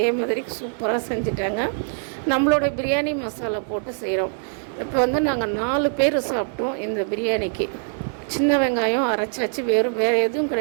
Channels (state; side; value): silent; left; digital silence